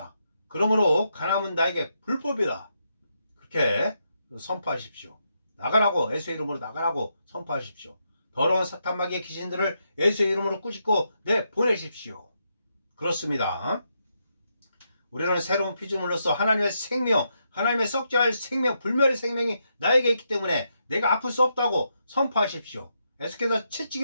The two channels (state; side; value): inverted; both; correlation -0.81